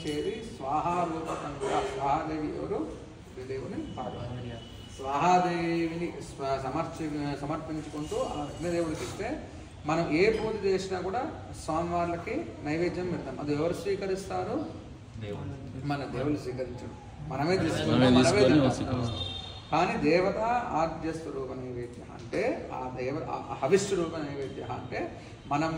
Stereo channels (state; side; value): identical; both; correlation 1.00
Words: స్వాహారూపకం కూడా. స్వాహాదేవి ఎవరు? అగ్నిదేవుని పార్వతి. స్వాహాదేవిని సమర్పించుకుంటూ ఆ అగ్నిదేవుడికి ఇస్తే మనం ఏ పూజ చేసినా కూడా స్వామివార్లకి నైవేద్యం పెడతాం. అది ఎవరు స్వీకరిస్తారు? మన దేవుడు స్వీకరించడు, మనమే తీసుకుంటాం. కానీ దేవత ఆద్య స్వరూప నైవేద్య అంటే హవిస్వరూప నైవేద్య అంటే మనం